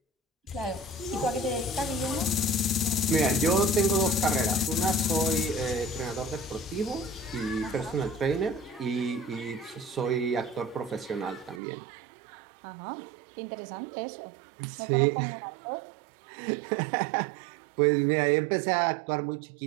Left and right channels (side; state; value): left; drops out; at 11.6 s